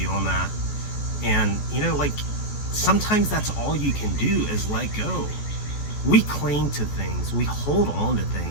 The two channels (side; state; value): right; late; 14 ms